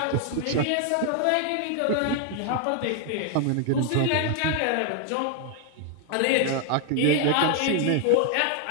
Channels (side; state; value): both; different; correlation 0.00